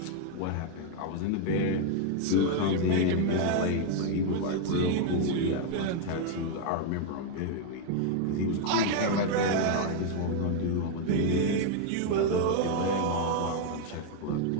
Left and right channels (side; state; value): both; different; correlation 0.00